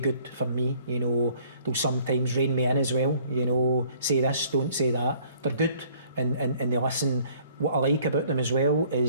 for me. You know, they'll sometimes rein me in as well. You know, say this, don't say that. They're good and they listen. What I like about them as well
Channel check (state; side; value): inverted; both; correlation -0.58